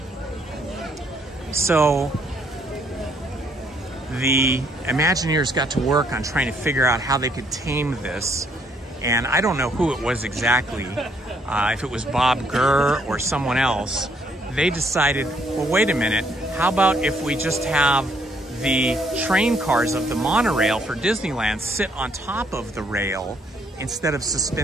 So the Imagineers got to work on trying to figure out how they could tame this. And I don't know who it was exactly, if it was Bob Gurr or someone else. They decided, well, wait a minute, how about if we just have the train cars of the monorail for Disneyland sit on top of the rail instead of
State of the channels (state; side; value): normal; both; correlation 0.68